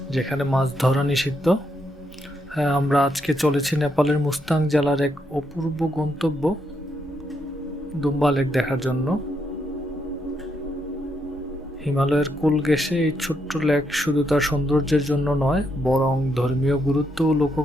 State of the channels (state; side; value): normal; both; correlation 0.78